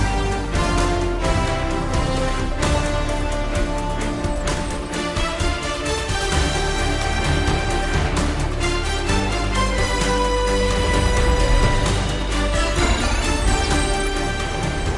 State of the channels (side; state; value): both; identical; correlation 1.00